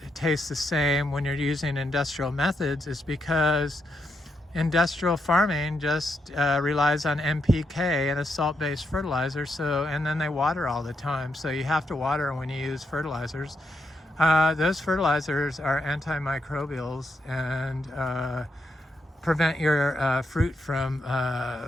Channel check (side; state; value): both; normal; correlation 0.81